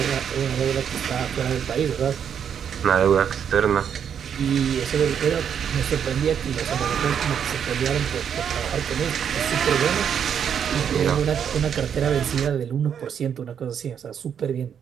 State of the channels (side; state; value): left; quieter; 8.1 dB